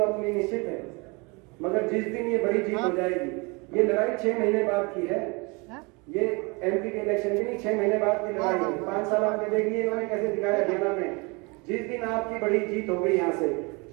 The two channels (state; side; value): quieter; left; 28.6 dB